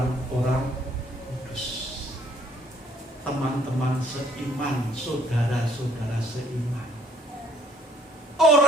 kudus. Teman-teman seiman, saudara-saudara seiman.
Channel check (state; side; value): normal; both; correlation 0.63